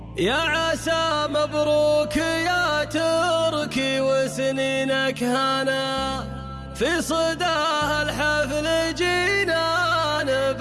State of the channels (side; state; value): both; identical; correlation 1.00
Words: يا عسى مبروك يا تركي وسنينك هنا، في صداه الحفل جينا